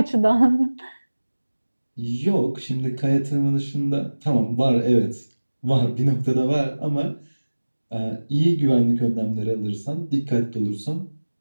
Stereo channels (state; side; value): inverted; both; correlation -1.00